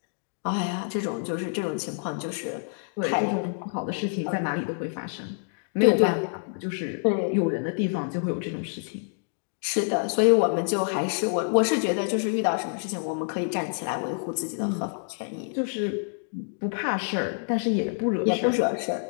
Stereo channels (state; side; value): silent; right; digital silence